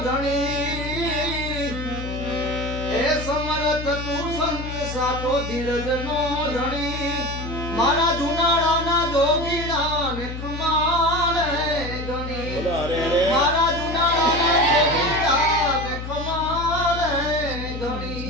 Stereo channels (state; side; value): noise; left; hum, 7 dB below the sound